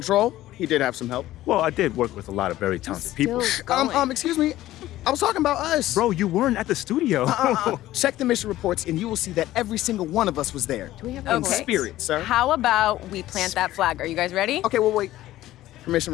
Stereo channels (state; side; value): quieter; right; 15.0 dB